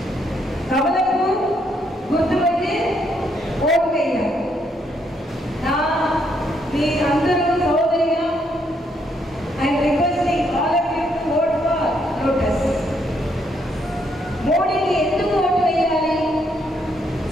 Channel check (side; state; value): both; normal; correlation 0.73